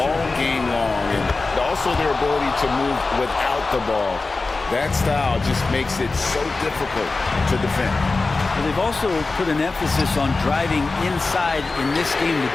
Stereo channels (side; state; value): right; quieter; 3.7 dB